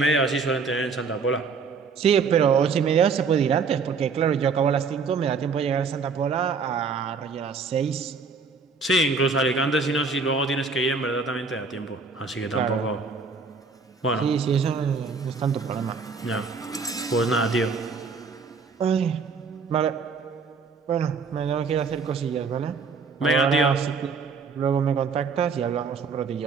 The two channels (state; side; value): quieter; left; 5.0 dB